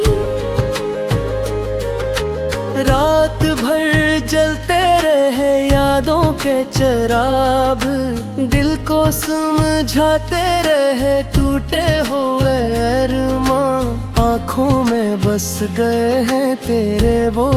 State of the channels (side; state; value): both; identical; correlation 1.00